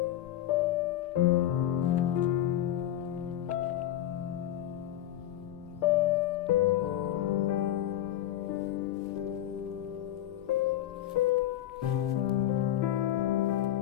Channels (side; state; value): right; quieter; 12.5 dB